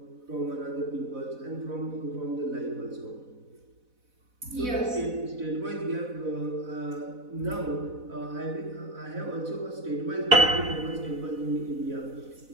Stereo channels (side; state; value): left; late; 4.0 ms